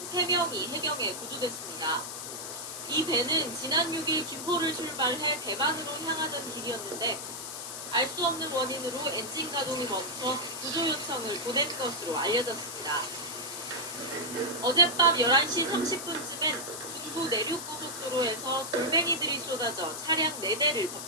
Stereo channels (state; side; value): noise; left; hiss, 7 dB below the sound